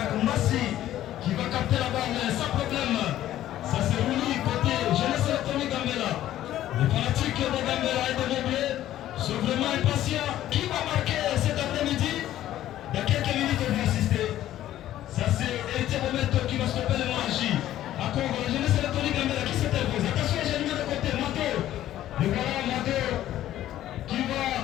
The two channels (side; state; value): right; quieter; 13.0 dB